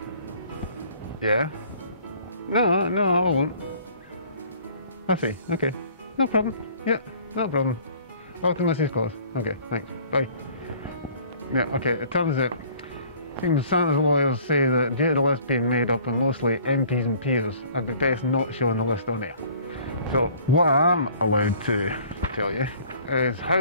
Yeah. No, I won't. I see. Okay. No problem. Yeah, no problem. Off to Mrs. Claus. Okay, thanks. Bye. Yeah, okay. It turns out, seems Santa's lawyers say that due to the list being made up of mostly MPs and peers, I'd be best not showing the list on air. So, what I'm allowed to tell you is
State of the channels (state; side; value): inverted; both; correlation -0.52